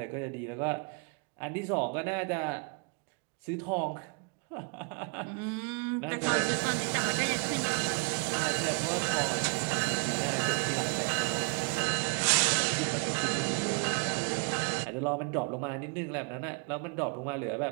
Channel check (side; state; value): left; quieter; 36.3 dB